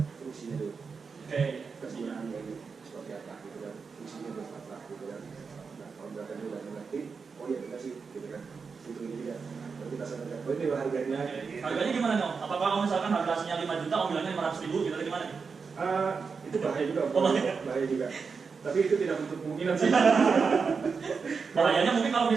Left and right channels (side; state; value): left; quieter; 5.2 dB